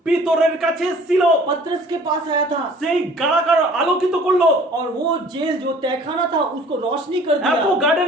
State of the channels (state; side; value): normal; both; correlation 0.51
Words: পিতরের কাছে ছিল, पतरस के पास आया था সেই কারাগার আলোকিত করলো। और वो जेल जो तहखाना था उसको रोशनी कर এত दिया।